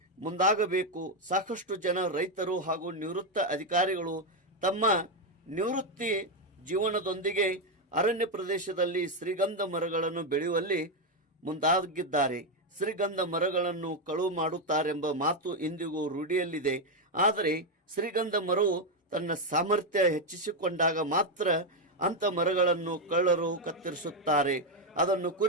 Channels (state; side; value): normal; both; correlation 0.05